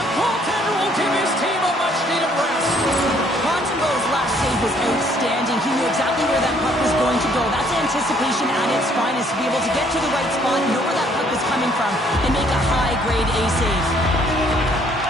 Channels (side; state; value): both; normal; correlation 0.64